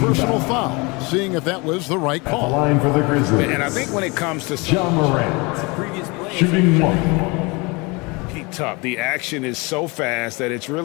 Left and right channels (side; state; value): right; quieter; 27.0 dB